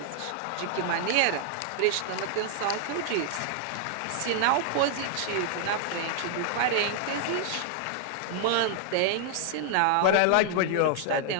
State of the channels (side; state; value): both; different; correlation -0.01